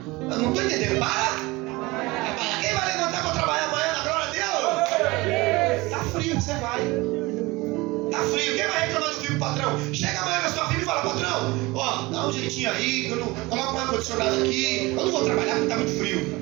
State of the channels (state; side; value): quieter; left; 22.2 dB